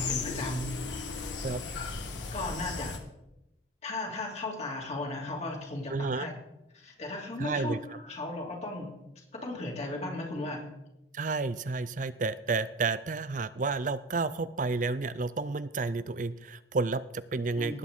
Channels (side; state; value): both; normal; correlation 0.32